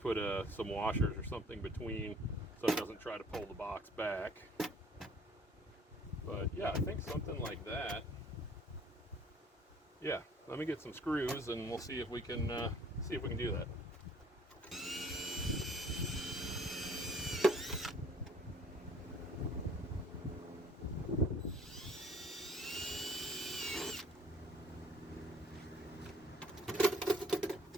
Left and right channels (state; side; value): normal; both; correlation 0.55